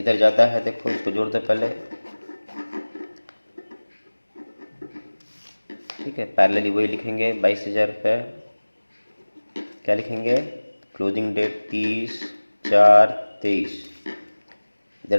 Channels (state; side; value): inverted; both; correlation -1.00